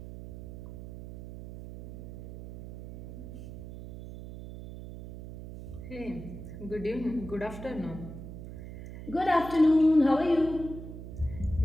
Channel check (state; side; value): noise; right; hum, 11 dB below the sound